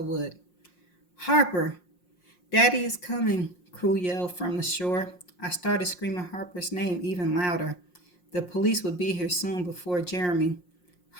would. Harper! Daddy is coming, Crew yelled from the shore. I started screaming Harper's name even louder. The police would be here soon before Jeremy.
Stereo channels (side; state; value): right; late; 5.6 ms